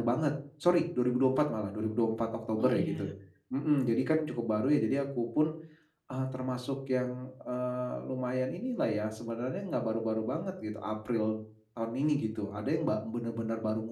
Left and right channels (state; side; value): identical; both; correlation 1.00